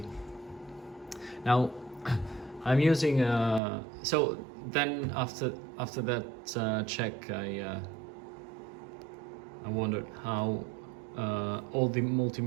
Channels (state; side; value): drops out; left; at 3.6 s